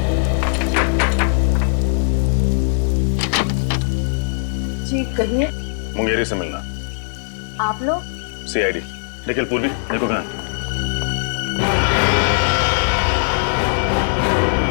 जी कहिए। मुंगेरी से मिलना। आप लोग? सीआईडी। निखिल पूर्वी, देखो कहाँ।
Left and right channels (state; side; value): silent; right; 66 dB below the other